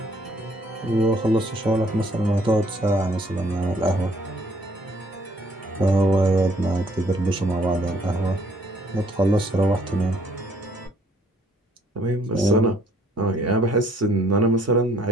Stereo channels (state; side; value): normal; both; correlation 0.63